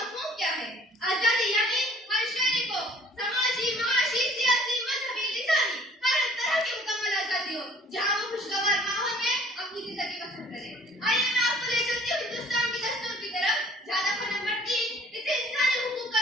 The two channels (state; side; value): normal; both; correlation 0.54